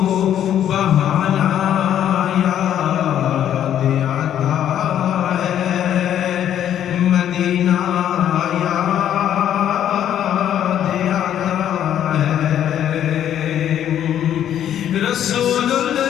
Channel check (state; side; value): quieter; right; 10.5 dB